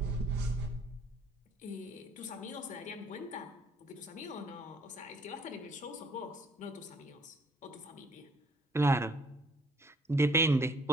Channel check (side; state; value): both; normal; correlation 0.61